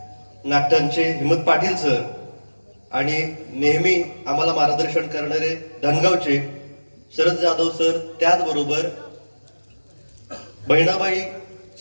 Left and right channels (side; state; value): both; inverted; correlation -1.00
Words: नाट्यांचे हिम्मत पाटील सर आणि नेहमी आम्हाला मार्गदर्शन करणारे धनगावचे शरद जाधव सर, त्याचबरोबर बहिणाबाई